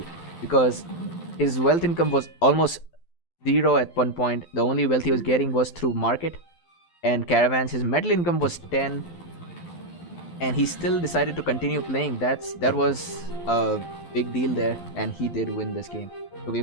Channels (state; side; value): late; right; 12 ms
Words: because his wealth income was almost zero at one point. The only wealth he was getting was through market and caravans. His metal income was 10, and he still decided to continue playing. That was a big deal there, and he did win this game. So